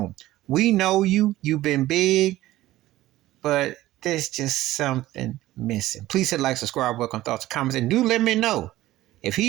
We know you've been big, but there's just something missing. Please hit like, subscribe, welcome thoughts, comments, and do let me know if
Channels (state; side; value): quieter; left; 15.8 dB